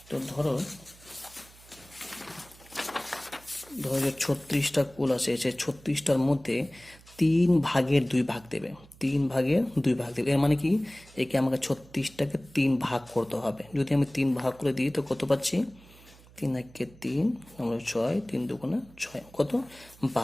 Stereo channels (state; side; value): noise; right; hum, 24 dB below the sound